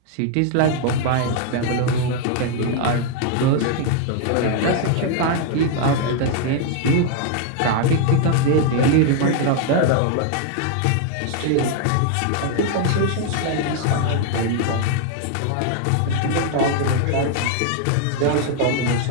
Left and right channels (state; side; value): different; both; correlation 0.00